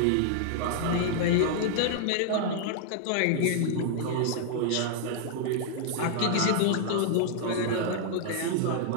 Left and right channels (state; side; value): different; both; correlation -0.01